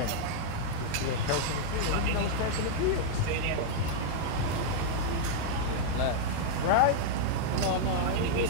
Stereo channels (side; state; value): both; different; correlation -0.01